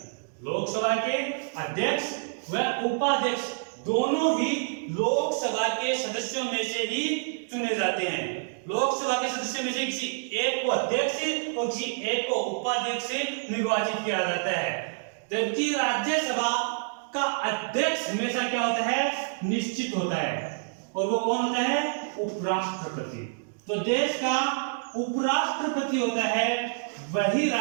लोकसभा के अध्यक्ष व उपाध्यक्ष दोनों ही लोकसभा के सदस्यों में से ही चुने जाते हैं। लोकसभा के सदस्यों में से किसी एक को अध्यक्ष और किसी एक को उपाध्यक्ष से निर्वाचित किया जाता है, जबकि राज्यसभा का अध्यक्ष हमेशा क्या होता है? निश्चित होता है, और वो कौन होता है? उपराष्ट्रपति। तो देश का उपराष्ट्रपति होता है, वही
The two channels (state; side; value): silent; left; digital silence